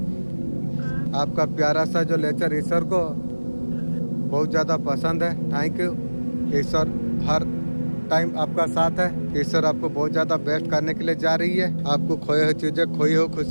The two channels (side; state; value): both; inverted; correlation -1.00